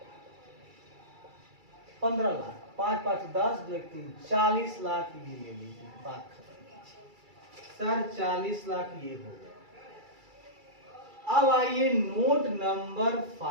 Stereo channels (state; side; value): late; left; 2.3 ms